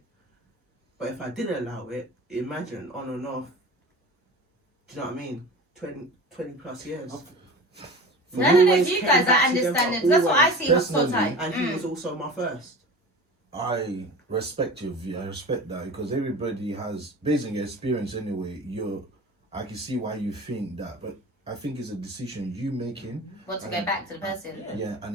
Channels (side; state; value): both; normal; correlation 0.36